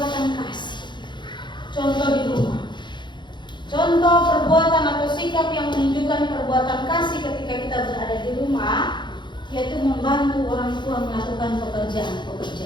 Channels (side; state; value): right; late; 0.22 ms